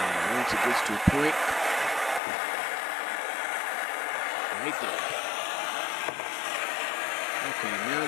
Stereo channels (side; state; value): right; drops out; at 2.2 s